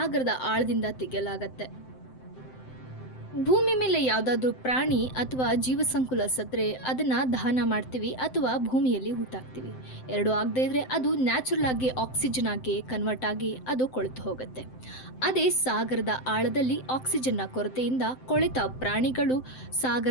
ಆಳದಿಂದ ತೆಗೆಯಲಾಗತ್ತೆ. ಭೂಮಿ ಮೇಲೆ ಯಾವುದಾದ್ರೂ ಪ್ರಾಣಿ ಅಥವಾ ಜೀವಸಂಕುಲ ಸತ್ತರೆ ಅದನ್ನು ದಹನ ಮಾಡ್ತೀವಿ ಅಥವಾ ಭೂಮಿಯಲ್ಲಿ ಹೂತಾಕ್ತೀವಿ. ಎರಡು ಆಗದೇ ಇದ್ರೆ ಅದು ನ್ಯಾಚುರಲ್ ಆಗಿ ಆಕ್ಸಿಜನ್ ಆಗಿ ಕನ್ವರ್ಟ್ ಆಗಿ ಅದು ಕೊಳೆತು ಹೋಗುತ್ತೆ. ಅದೇ ಸಾಗರದ ಆಳದಲ್ಲಿ ಆಕ್ಸಿಜನ್ನ ಕೊರತೆಯಿಂದ ಕೊಳೆತ ಪ್ರಾಣಿಗಳು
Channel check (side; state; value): right; late; 7.8 ms